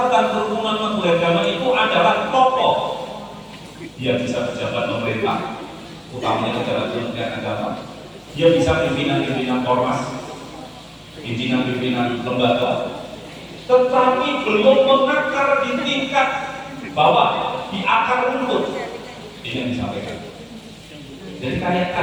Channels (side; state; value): both; identical; correlation 1.00